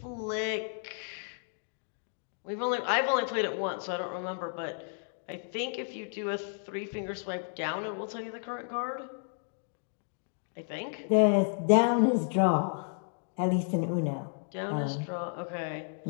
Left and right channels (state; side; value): silent; right; digital silence